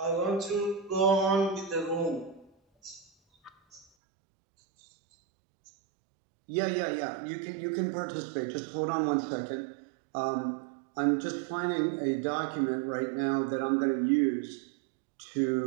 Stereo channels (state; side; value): drops out; left; at 3.9 s